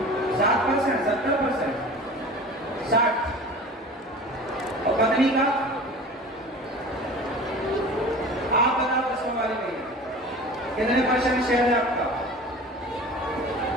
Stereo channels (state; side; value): normal; both; correlation 0.38